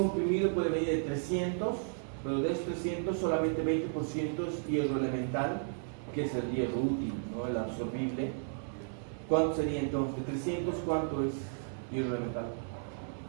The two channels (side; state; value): left; silent; 55 dB below the other